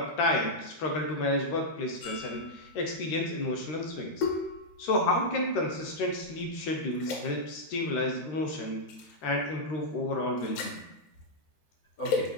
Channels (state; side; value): late; right; 13 ms